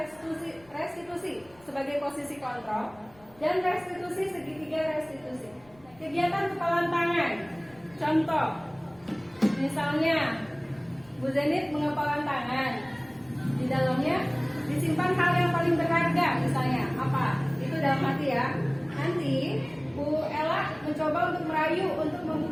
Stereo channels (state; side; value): noise; left; rumble, 28 dB below the sound